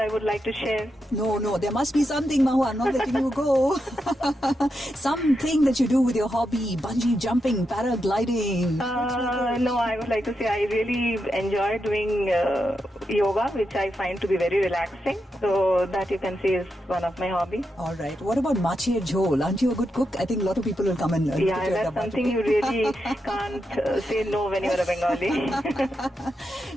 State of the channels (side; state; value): both; normal; correlation 0.85